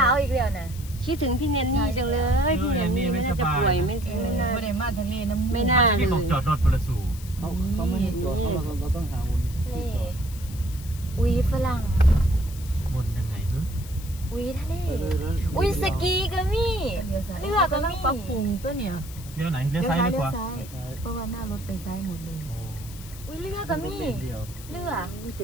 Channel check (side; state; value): left; noise; hiss, 17 dB below the sound